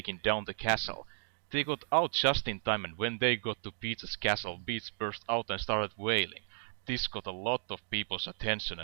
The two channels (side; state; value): left; silent; digital silence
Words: down the castle. They got out just in time, and when they got to Peach's castle, Peach burst out and started wailing. This got a lot of people's attention,